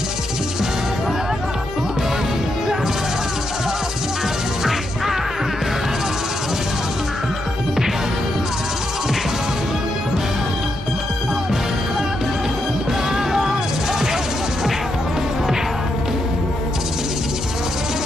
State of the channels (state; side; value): normal; both; correlation 0.82